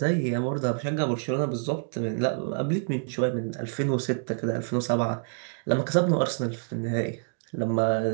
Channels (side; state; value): left; silent; 60 dB below the other